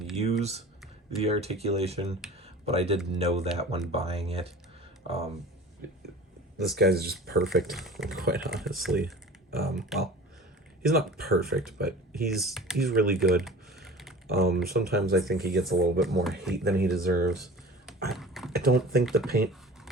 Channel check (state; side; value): normal; both; correlation 0.40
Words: use the articulation, but I did know that when buying it. This guy's just perfect, quite honestly. Well, he's not perfect, but he's really good. Sometimes I think he gets a little bit more hate than he deserves. I don't think the paint